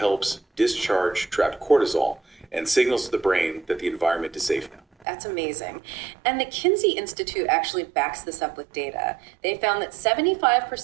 discharge trapped cortisol and signals to the brain that the environment is safe now. That's amazing. And the Kinsey Institute actually backs this up with data. They found that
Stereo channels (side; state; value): left; drops out; at 5.1 s